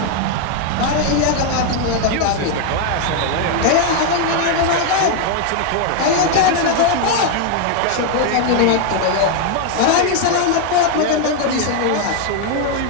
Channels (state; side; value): different; both; correlation 0.01